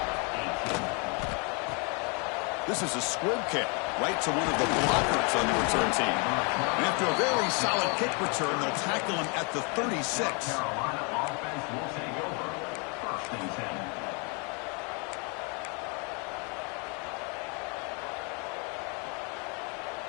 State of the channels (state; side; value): quieter; right; 34.1 dB